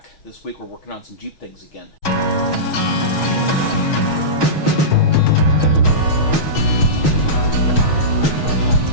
This week we're working on some Jeep things again.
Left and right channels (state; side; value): late; right; 6.4 ms